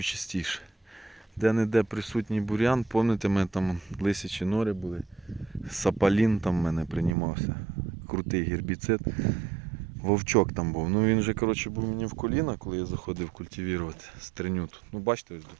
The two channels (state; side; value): drops out; left; at 7.2 s